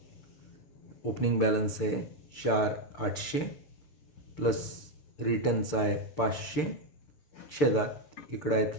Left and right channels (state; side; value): late; right; 6.7 ms